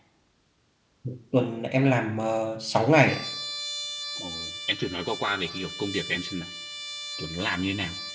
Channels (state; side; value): identical; both; correlation 1.00